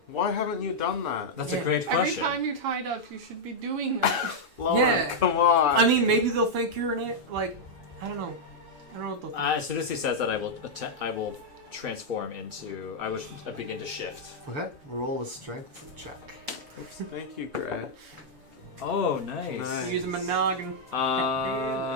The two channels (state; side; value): late; left; 7.0 ms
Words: why haven't you done that? That's Yeah. a great Every question. time you're tied up, you should be doing that. Lonan, Yeah. come on. I mean, maybe they'll think you're an like. I don't know. I don't know what they'll think. As soon as he says that, I will transform into. I will begin to shift. Okay, roll a strength check. Thank you, Gret. Oh, nice. Nice. Use a monogamous.